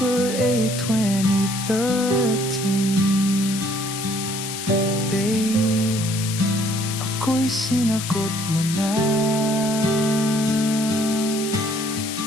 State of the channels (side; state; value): left; noise; hiss, 7 dB below the sound